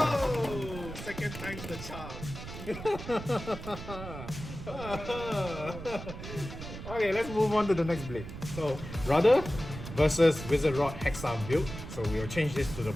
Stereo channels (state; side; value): noise; right; rumble, 10 dB below the sound